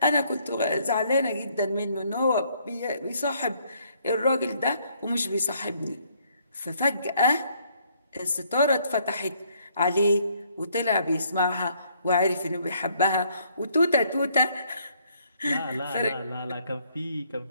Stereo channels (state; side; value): inverted; both; correlation -0.67